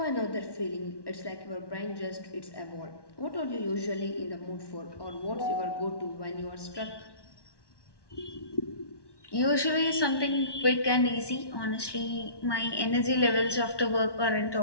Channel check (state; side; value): late; right; 1.1 ms